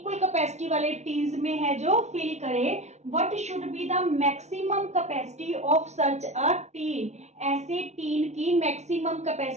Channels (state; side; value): late; left; 0.32 ms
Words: कैपेसिटी वाले टीन्स में है जो फिल करे। What should be the maximum capacity of such a tin? ऐसे टीन की मैक्सिमम